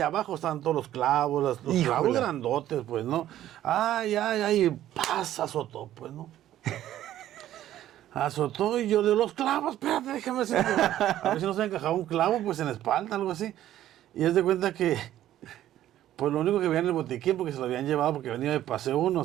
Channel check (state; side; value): quieter; left; 12.7 dB